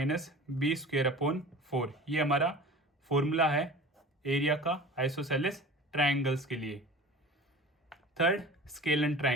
B square upon 4। ये हमारा फॉर्मूला है एरिया का आइसोसेलेस ट्राइंगल्स के लिए। Third, scalene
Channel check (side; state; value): both; normal; correlation 0.39